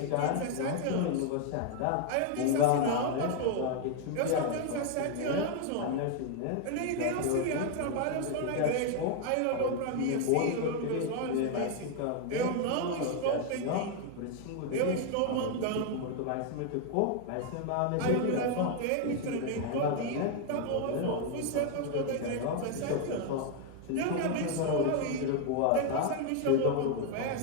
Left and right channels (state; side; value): different; both; correlation 0.00